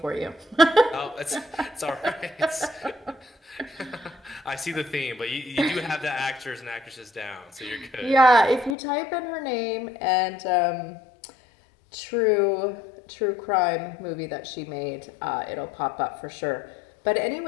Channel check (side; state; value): right; drops out; at 8.8 s